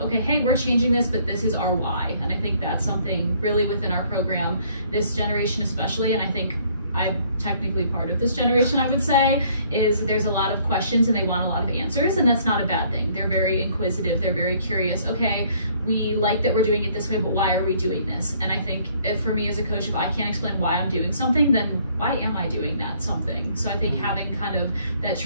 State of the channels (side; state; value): both; inverted; correlation -0.62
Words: okay, hey, we're changing this, but this is our why. And I think that's something really within our program, this generation especially, and I think I'm technically part of this generation, I would say, is there's a lot of questions and they want a lot of answers, and that's not a bad thing. They're very inquisitive, they're very curious. Okay, we like that we're doing it this way, but why are we doing this? And I think if, for me as a coach, if I can't explain why I'm doing something, then why am I doing that something? So I think having kind of that